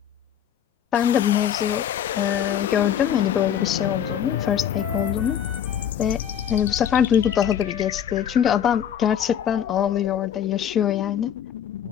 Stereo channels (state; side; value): quieter; right; 9.4 dB